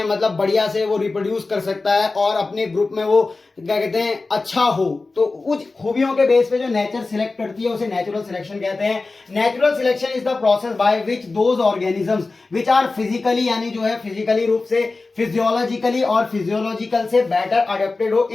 मतलब बढ़िया से वो रिप्रोड्यूस कर सकता है, और अपने ग्रुप में वो क्या कहते हैं अच्छा हो। तो उस खूबियों के बेस पे जो नेचर सिलेक्ट करती है उसे नेचुरल सिलेक्शन कहते हैं। Natural selection is the process by which those organisms which are physically, यानी जो है फिजिकली रूप से, फिजियोलॉजिकली और फिजियोलॉजिकल से बेटर अडेप्टेड हो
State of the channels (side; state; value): right; quieter; 3.6 dB